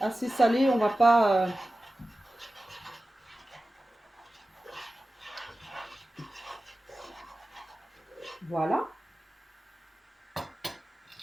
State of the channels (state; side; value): normal; both; correlation 0.95